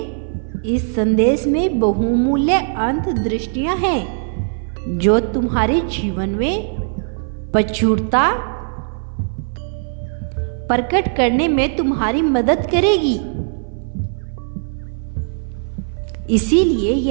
इस संदेश में बहुमूल्य अंतर्दृष्टियां हैं जो तुम्हारे जीवन में प्रचुरता प्रकट करने में तुम्हारी मदद करेगी। इसीलिए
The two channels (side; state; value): left; silent; 58 dB below the other